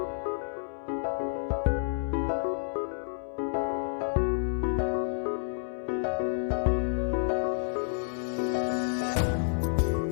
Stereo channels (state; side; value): silent; right; 58 dB below the other